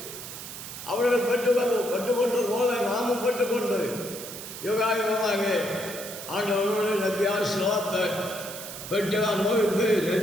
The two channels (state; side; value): noise; right; hiss, 10 dB below the sound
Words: அவர்கள் பெற்றுக்கொண்டது போல நாமும் பெற்றுக்கொண்டு யுகாயுகமாக ஆண்டவர்களுடைய நத்தியாசலாத்தை பெற்று அனுபவித்து